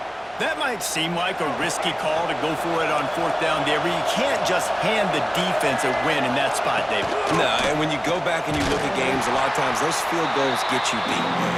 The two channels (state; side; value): identical; both; correlation 1.00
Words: That might seem like a risky call to go for it on 4th down there, but you can't just hand the defense a win in that spot, David. No, and when you go back and you look at games, a lot of times those field goals get you beat.